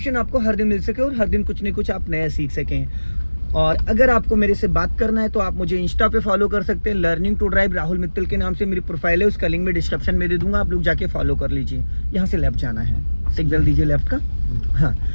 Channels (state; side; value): inverted; both; correlation -1.00